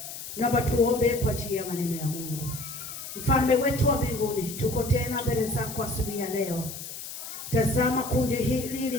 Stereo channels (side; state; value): left; noise; hiss, 10 dB below the sound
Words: Naomba tuombe kwa ajili ya maneno ya Mungu. Mfalme wetu wa mbinguni, tuko tena mbele zako asubuhi ya leo. Tazama kundi hili